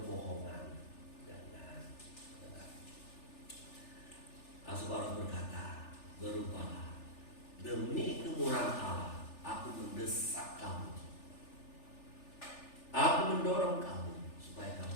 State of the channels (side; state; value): right; late; 3.4 ms